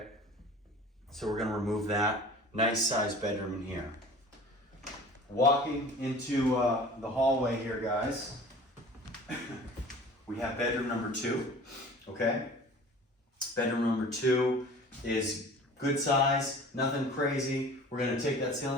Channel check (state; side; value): normal; both; correlation 0.43